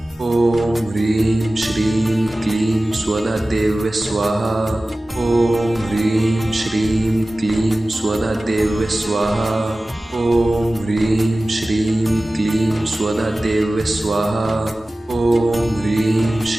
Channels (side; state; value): both; normal; correlation 0.97